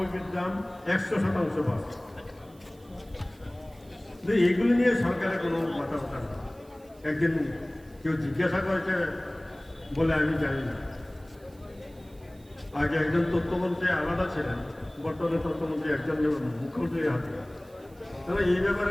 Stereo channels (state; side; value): noise; right; hiss, 29 dB below the sound